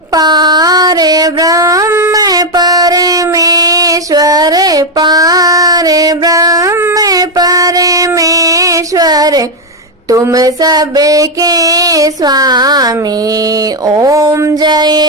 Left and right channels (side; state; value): both; normal; correlation 0.04